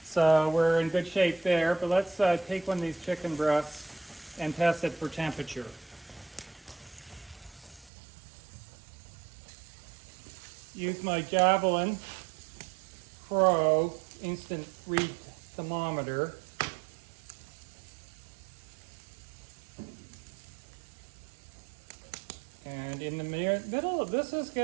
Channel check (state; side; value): drops out; left; at 7.9 s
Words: So we're in good shape there. But let's take one of these chicken breasts and test it for temperature. Use my Javelin Pro instant read thermometer. And in the middle of this is